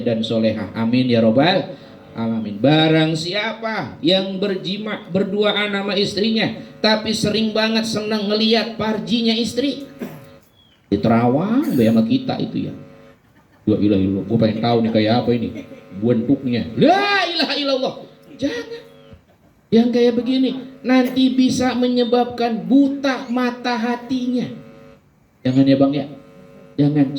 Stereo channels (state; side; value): identical; both; correlation 1.00